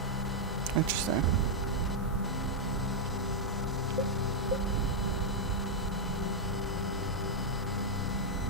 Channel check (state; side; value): normal; both; correlation -0.03